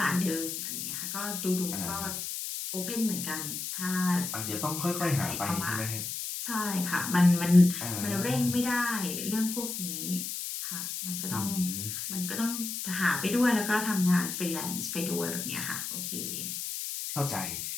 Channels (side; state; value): left; noise; hiss, 4 dB below the sound